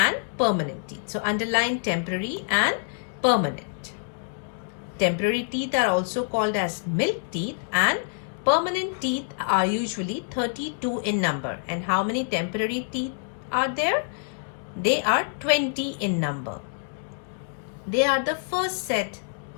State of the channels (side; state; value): right; silent; digital silence